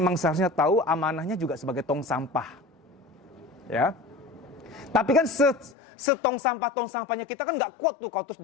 seharusnya tahu amanahnya juga sebagai tong sampah. Ya. Tapi kan tong sampahnya kita kan nggak kuat tuh kalau terus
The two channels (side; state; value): right; drops out; at 5.8 s